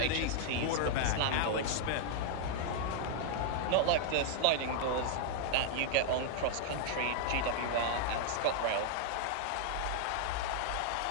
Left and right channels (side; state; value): both; different; correlation 0.00